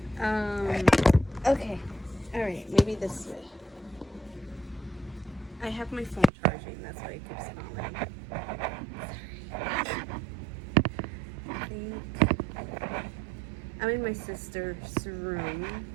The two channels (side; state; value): left; drops out; at 6.3 s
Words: Okay, all right, maybe this way. I have my phone charging, that's why it keeps falling. Sorry. I think I'm in my sister's room,